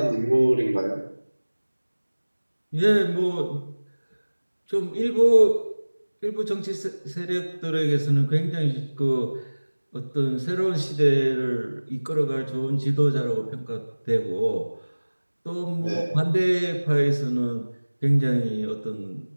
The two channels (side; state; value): both; inverted; correlation -1.00